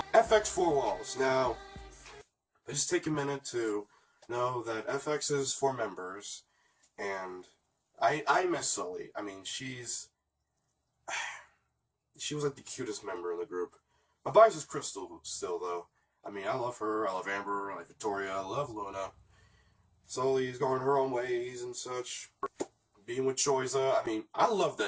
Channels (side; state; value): both; identical; correlation 1.00